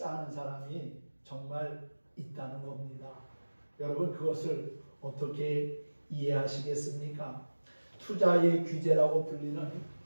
사람이 정말 있다는 겁니다. 여러분 그것을 어떻게 이해하시겠습니까? 투자의 귀재라고 불리는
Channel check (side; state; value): both; inverted; correlation -1.00